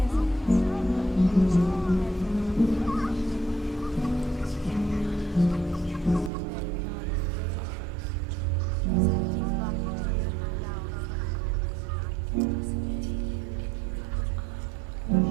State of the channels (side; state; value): left; drops out; at 6.3 s